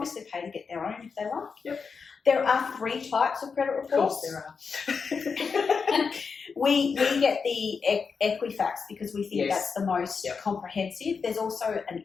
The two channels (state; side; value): quieter; right; 5.4 dB